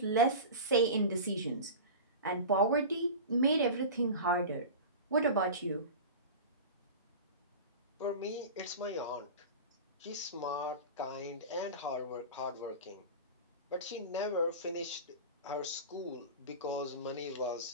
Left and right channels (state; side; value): inverted; both; correlation -0.30